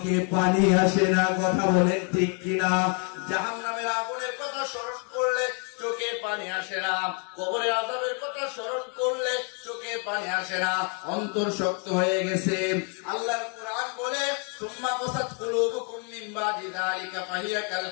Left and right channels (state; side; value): quieter; right; 38.7 dB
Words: পানি আসে না। কথা বলেন ঠিক কিনা? জাহান্নামের আগুনের কথা স্মরণ করলে চোখে পানি আসে না, কবরের আযাবের কথা স্মরণ করলে চোখে পানি আসে না, অন্তর শক্ত হয়ে গেছে। আল্লাহর কুরআন বলে, সুম্মা কাসাত কুলুবুকুম মিন বাদি যালিকা ফাহিয়া কাল